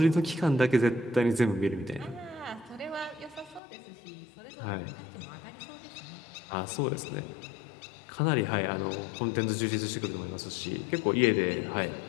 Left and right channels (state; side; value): drops out; right; at 3.6 s